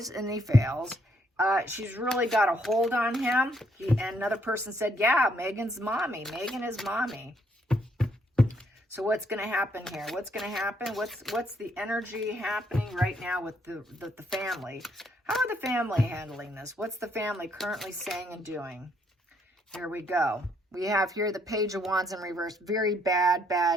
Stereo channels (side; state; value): both; normal; correlation 0.71